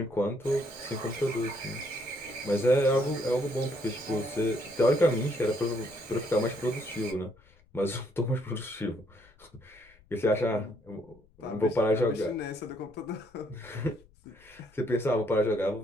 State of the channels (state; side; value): noise; left; rumble, 28 dB below the sound